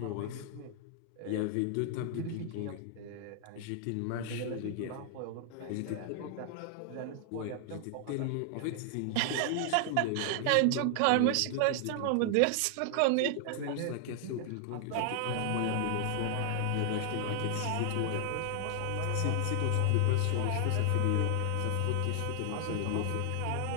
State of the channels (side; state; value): both; different; correlation 0.00